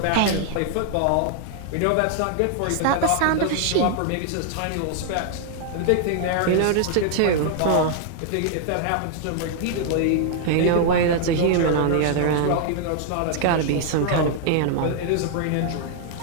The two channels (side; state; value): both; different; correlation 0.00